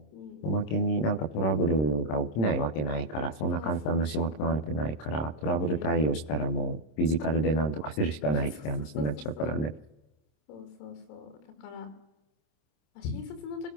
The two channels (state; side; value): late; right; 26 ms